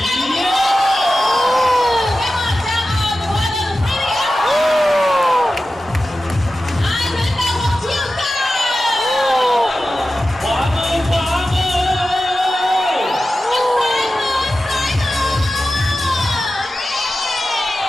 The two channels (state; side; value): normal; both; correlation 0.93